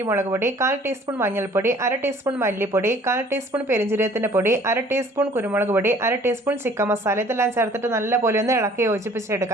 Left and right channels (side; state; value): both; normal; correlation 0.54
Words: മുളക് പൊടി, 1/4 ടീസ്പൂൺ മഞ്ഞൾപ്പൊടി, 1/2 ടീസ്പൂൺ മല്ലിപ്പൊടി, 1/4 ടീസ്പൂൺ പെരിഞ്ജീരകത്തിന്റെ പൊടി, 1/2 ടീസ്പൂൺ കുരുമുളക് പൊടി, 1/2 ടീസ്പൂൺ ചിക്കൻ മസാല, ഇതെല്ലാം ചേർത്തിട്ട് നല്ല പോലെ ഒന്ന് ഇളക്കി